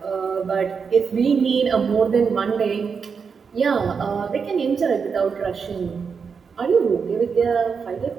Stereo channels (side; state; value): left; quieter; 5.8 dB